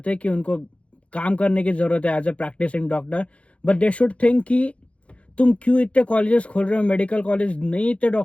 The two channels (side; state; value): right; late; 0.062 ms